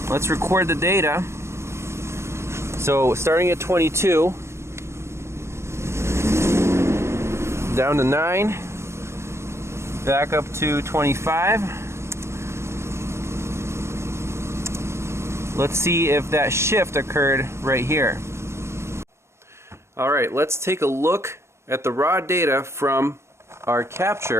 Let's record the data. So starting at 22, down to 9, back up to 25. Let's see if that shift occurred right here. Alright, let's take a look at the raw data from our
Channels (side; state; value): left; late; 0.13 ms